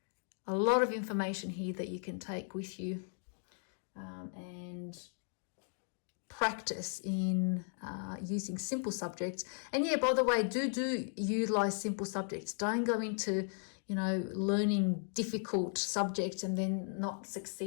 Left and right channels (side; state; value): right; silent; 53 dB below the other